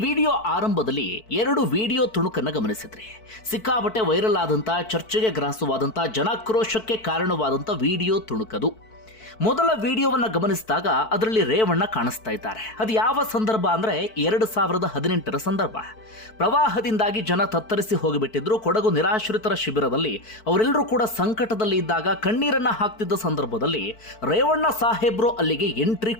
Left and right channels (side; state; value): right; late; 4.5 ms